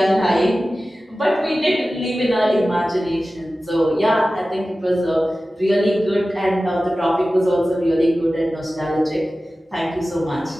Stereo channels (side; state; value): both; normal; correlation 0.95